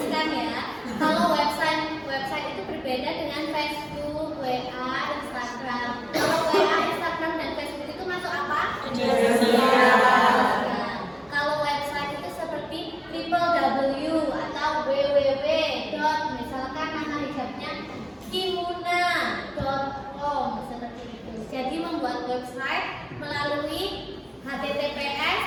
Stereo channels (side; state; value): both; identical; correlation 1.00